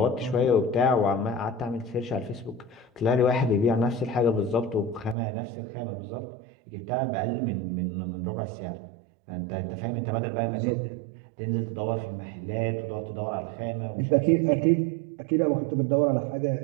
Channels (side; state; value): left; drops out; at 5.2 s